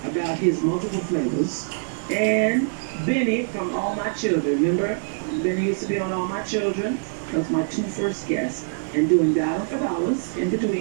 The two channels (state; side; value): silent; left; digital silence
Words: about his multiple flavors, and Benny from All My Children. Remember, Benny used to be on All My Children. That was my two first guests. And doing Dollar for Dollars in